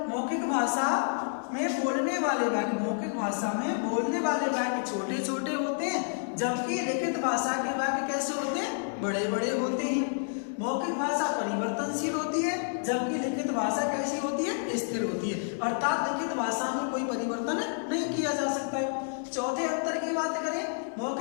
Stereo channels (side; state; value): right; silent; digital silence